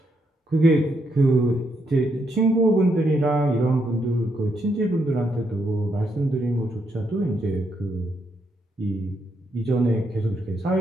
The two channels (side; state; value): both; normal; correlation 0.78